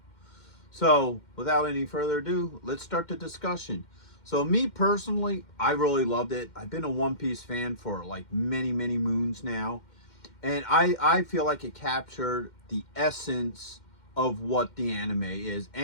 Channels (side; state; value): right; late; 2.1 ms